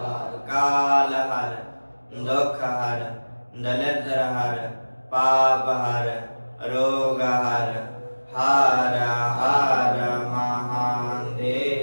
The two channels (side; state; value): both; inverted; correlation -1.00